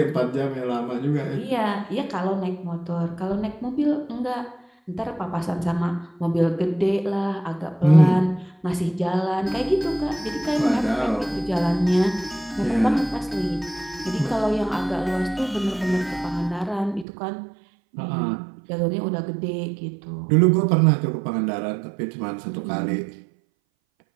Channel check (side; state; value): left; drops out; at 17.1 s